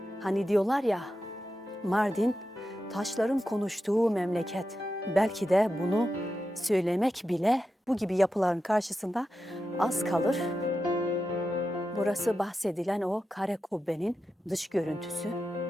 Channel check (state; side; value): normal; both; correlation 0.90